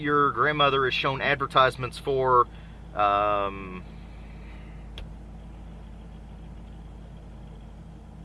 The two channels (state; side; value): identical; both; correlation 1.00